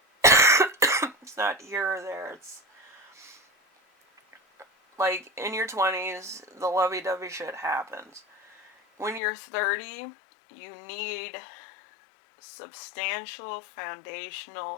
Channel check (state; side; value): drops out; right; at 9.2 s